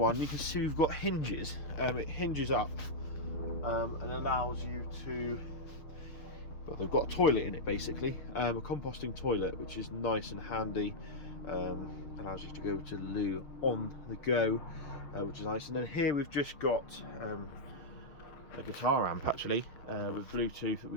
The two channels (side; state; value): right; late; 6.9 ms